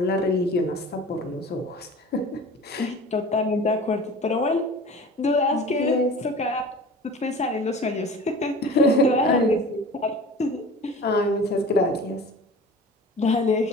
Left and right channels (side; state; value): both; normal; correlation 0.40